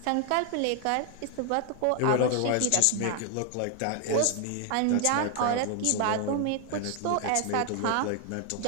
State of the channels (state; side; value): different; both; correlation 0.00